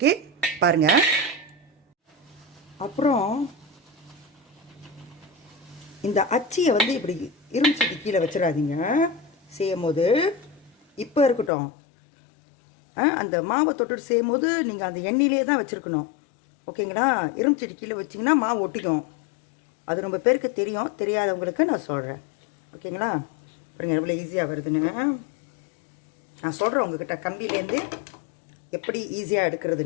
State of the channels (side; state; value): right; drops out; at 11.5 s